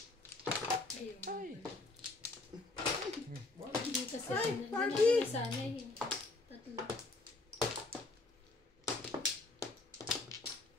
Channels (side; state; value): right; quieter; 3.1 dB